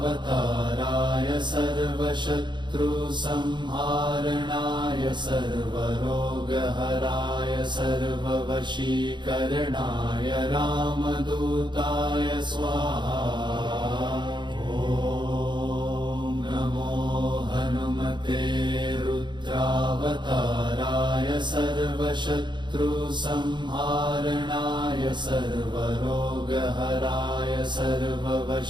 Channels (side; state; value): left; late; 0.22 ms